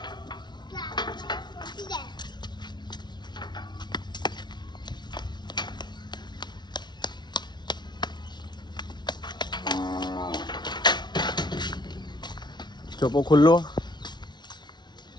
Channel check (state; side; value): late; right; 0.21 ms